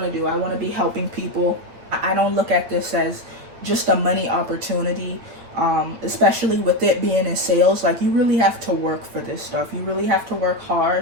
to do. I want to be helping people. I don't look at this as just a money opportunity, especially with it being in sales. Like, you really have to work for this stuff. You really have to work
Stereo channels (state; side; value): late; left; 8.7 ms